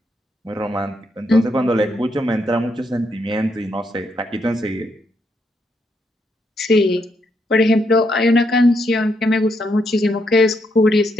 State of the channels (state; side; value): normal; both; correlation 0.78